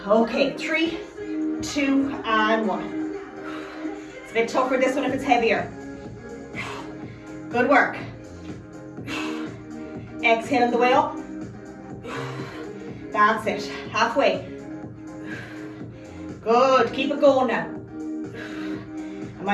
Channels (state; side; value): identical; both; correlation 1.00